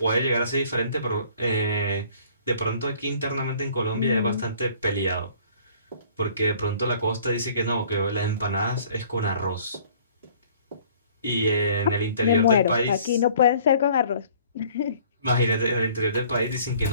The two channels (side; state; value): both; inverted; correlation -0.54